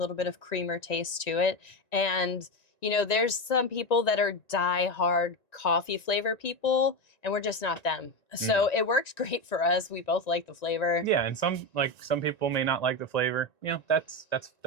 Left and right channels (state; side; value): late; right; 1.9 ms